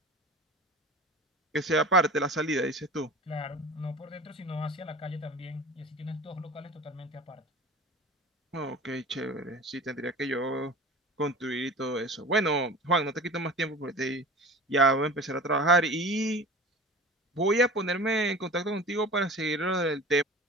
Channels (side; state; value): both; normal; correlation 0.37